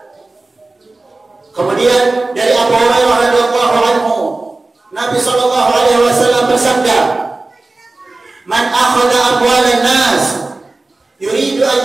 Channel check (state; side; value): quieter; left; 3.2 dB